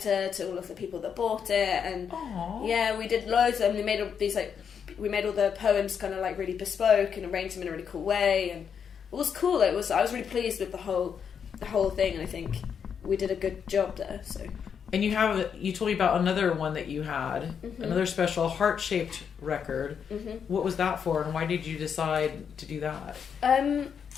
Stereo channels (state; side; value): quieter; right; 7.2 dB